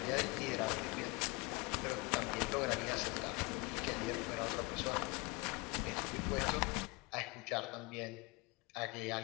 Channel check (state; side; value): quieter; right; 25.6 dB